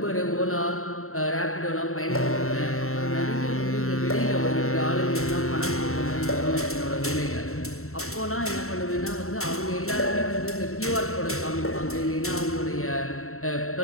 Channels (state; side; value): late; right; 0.63 ms